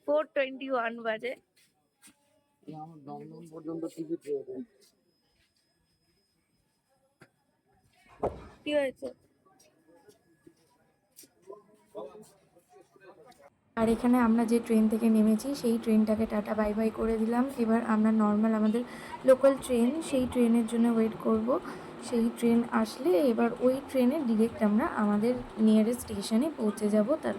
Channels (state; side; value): identical; both; correlation 1.00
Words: 4:21 বাজে। আমার দমদম পর্যন্ত টিকিট রয়েছে। কি হয়েছে? আর এখানে আমরা যে ট্রেন থেকে নেমেছি সেই ট্রেনটাকে টাটা বাই বাই করে দিলাম। এবার আমরা নর্মাল আমাদের লোকাল ট্রেন, সেই ট্রেনের জন্য ওয়েট করব। সেই ট্রেন আসলে এবার ওই ট্রেনে ডিরেক্ট আমরা আমাদের নিয়ারেস্ট স্টেশনে পৌঁছে যাব,